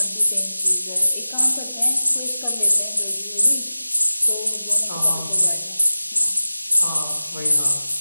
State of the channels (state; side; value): inverted; both; correlation -0.94